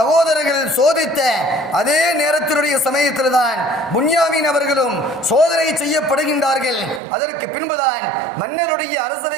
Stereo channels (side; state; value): left; drops out; at 7.0 s